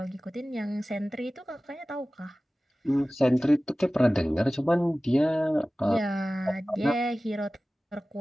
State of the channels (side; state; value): both; normal; correlation 0.97